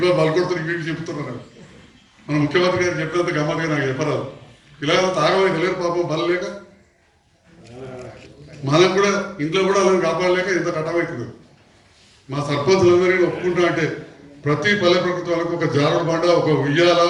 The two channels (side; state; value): both; identical; correlation 1.00